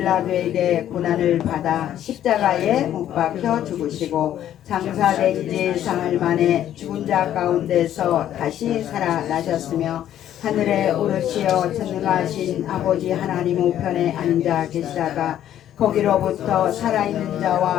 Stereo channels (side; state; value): right; quieter; 11.3 dB